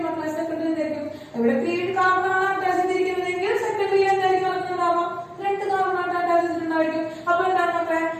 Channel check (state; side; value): identical; both; correlation 1.00